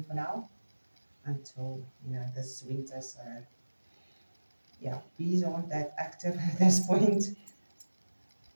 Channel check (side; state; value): both; inverted; correlation -1.00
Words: for now until this winter. So yeah, bees aren't that active at this point.